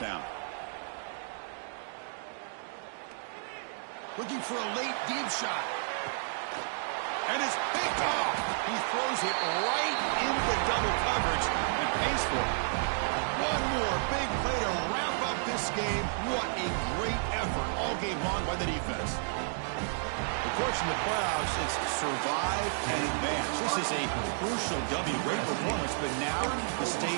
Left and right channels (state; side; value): silent; left; digital silence